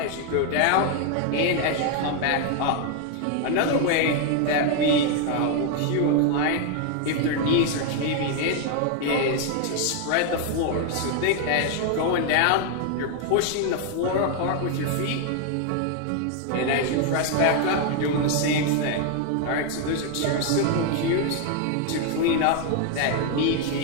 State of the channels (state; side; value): different; both; correlation 0.01